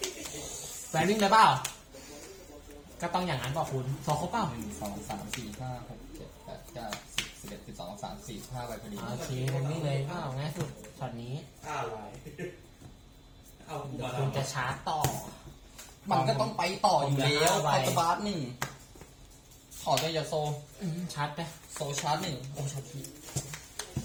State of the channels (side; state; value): both; identical; correlation 1.00